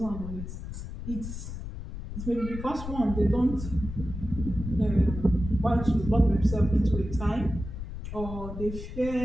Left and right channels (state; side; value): noise; left; rumble, 8 dB below the sound